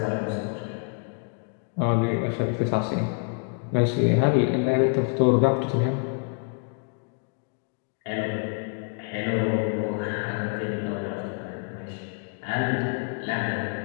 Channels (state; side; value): quieter; right; 38.5 dB